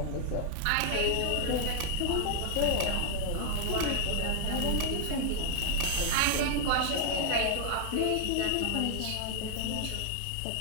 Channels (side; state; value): both; different; correlation 0.00